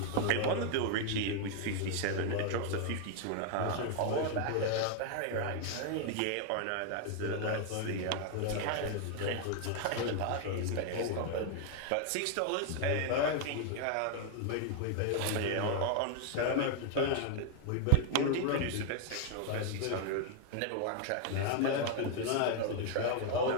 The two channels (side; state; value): both; different; correlation 0.00